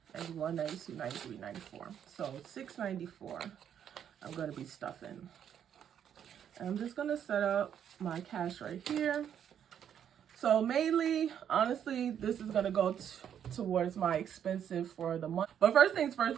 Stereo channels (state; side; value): quieter; left; 9.1 dB